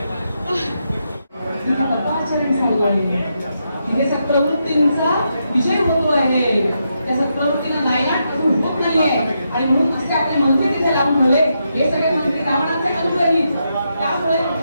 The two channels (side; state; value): both; inverted; correlation -0.83